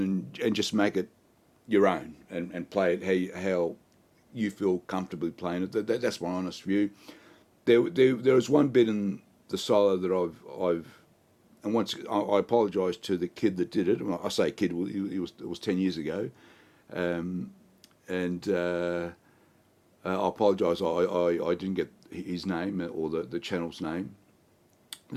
just make it your own and play it how you feel comfortably playing it. That's my honest view. There was one bit in the solo that I've and once I apologise to the kid that did it. I say kid, it was 10 years ago, and I apologise. I didn't get his name or the channel's name.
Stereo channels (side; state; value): both; identical; correlation 1.00